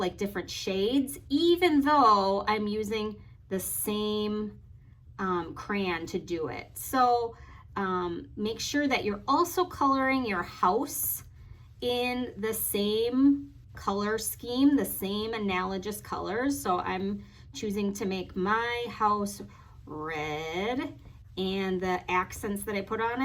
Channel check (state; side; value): identical; both; correlation 1.00